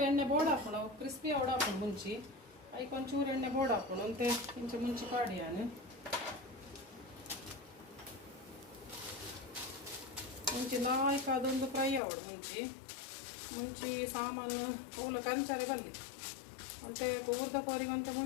ಎಣ್ಣೆ ಬೋರ್ಡ್ ಹಾಕೋಣ ಕ್ರಿಸ್ಪಿ ಅವಡ ಹಾಕೊಂಡು ಮುಂಚಿ ಐಕ್ ಒಂಚೂರು ಎಣ್ಣೆ ಬೋರ್ಡ್ ಹಾಕೋಣ ಅಂತೆ ಇಂಚೆ ಮುಂಚಿ ಪಾಡಿ ನಾನು ಮುಂಚಿ ನಾಲ್ಕು ಅದೊಂದು ಫ್ರೈ ಅವಡು ಮುಂಚಿ ಸಾಮಾನು ಪೂಲ ಕಂಚಾರೆ ಬಲ್ಲಿ ಅಂತೆ ಊರ್ದ ಕೋರಿಗಂತೆ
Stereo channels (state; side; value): drops out; right; at 12.0 s